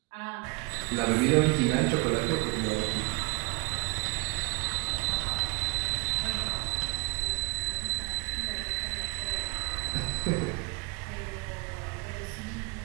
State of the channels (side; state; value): left; quieter; 27.1 dB